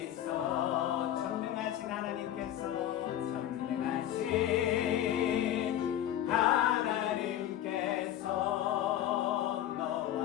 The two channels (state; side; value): quieter; right; 11.8 dB